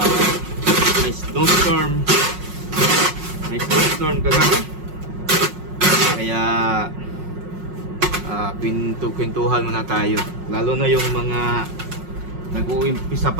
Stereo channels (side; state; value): left; late; 5.5 ms